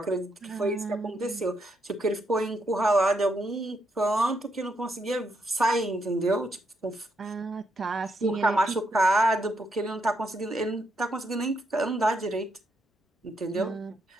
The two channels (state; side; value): normal; both; correlation 0.78